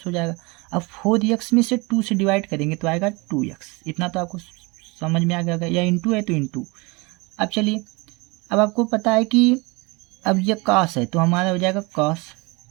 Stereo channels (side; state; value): left; quieter; 26.5 dB